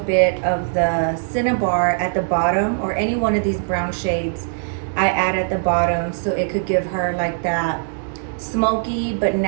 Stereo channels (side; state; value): left; silent; 65 dB below the other